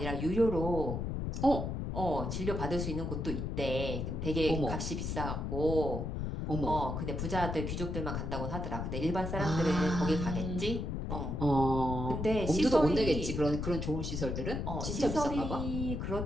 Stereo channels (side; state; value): left; noise; rumble, 3 dB below the sound